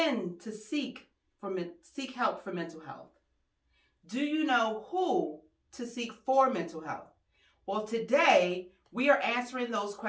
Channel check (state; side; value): identical; both; correlation 1.00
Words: to seek help for mental health? Do you know who to seek for mental health? Well, today we are answering those